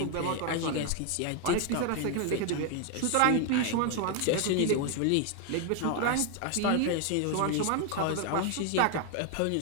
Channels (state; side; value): different; both; correlation 0.01